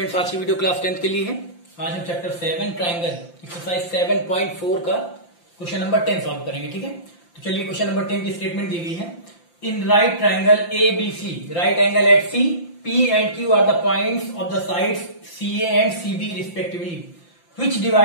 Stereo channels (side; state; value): right; late; 5.8 ms